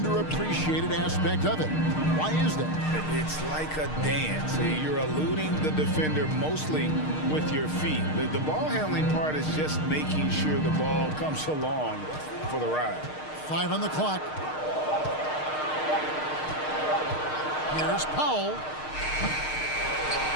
aspect of it. Why is that? It's like a dance. You're eluding the defender mostly with your feet. The ball handling part is just making sure the ball comes along for the ride. 5 on the clock. Here's Powell.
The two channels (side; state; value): right; late; 6.5 ms